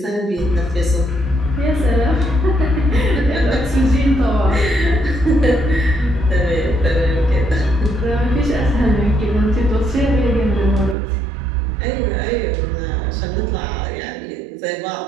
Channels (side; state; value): left; drops out; at 11.0 s